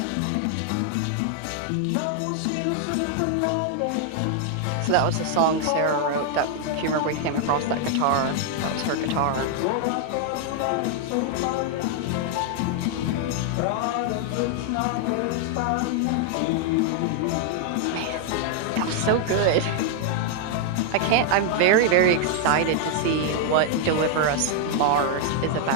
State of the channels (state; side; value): different; both; correlation 0.00